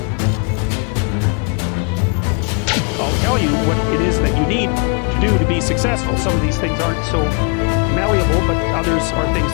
I'll tell you what it is that you need to do to be successful. Some of these things aren't so malleable, but others are things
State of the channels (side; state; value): right; quieter; 35.4 dB